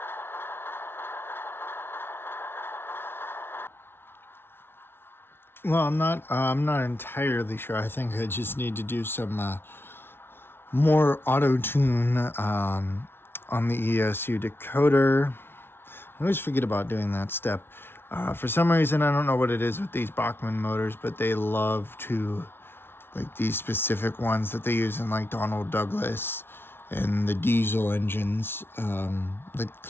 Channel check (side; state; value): right; late; 0.11 ms